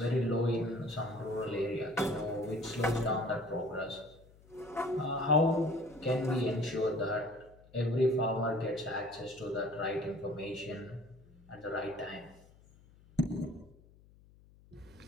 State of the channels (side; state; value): left; noise; hum, 26 dB below the sound